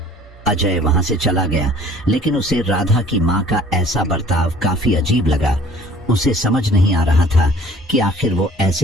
अजय वहां से चला गया, लेकिन उसे राधा की माँ का ऐसा बर्ताव काफी अजीब लगा। उसे समझ नहीं आ रहा था कि आखिर वो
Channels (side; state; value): both; normal; correlation 0.52